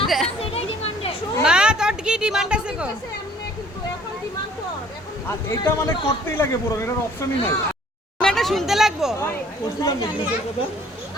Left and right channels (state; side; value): normal; both; correlation 0.56